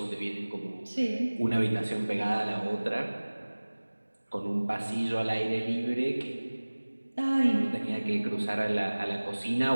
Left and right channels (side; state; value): both; inverted; correlation -1.00